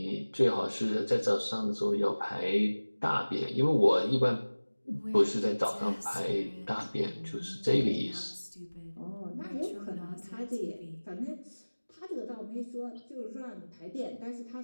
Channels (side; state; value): both; inverted; correlation -1.00